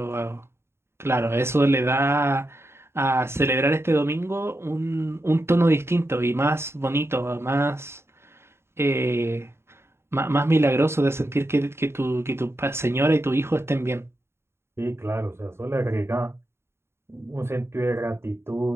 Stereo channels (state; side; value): late; left; 0.12 ms